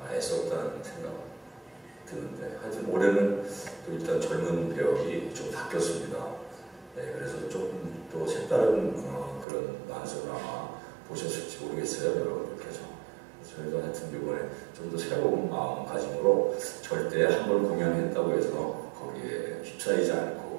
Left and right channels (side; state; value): left; drops out; at 9.5 s